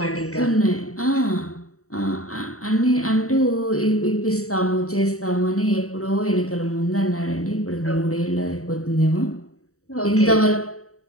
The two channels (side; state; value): right; late; 0.65 ms